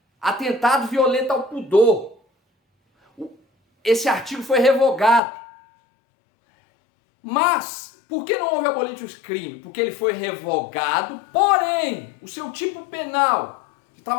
atentado violento ao pudor. Esse artigo foi revogado. Mas, por que não houve abolitius crime? Porque ele foi revogado, porém, o seu tipo penal, que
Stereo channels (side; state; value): right; drops out; at 5.2 s